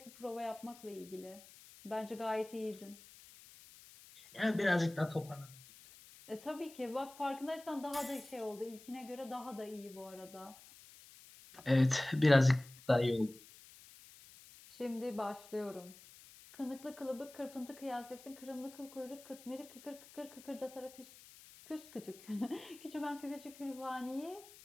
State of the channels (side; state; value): left; noise; hiss, 20 dB below the sound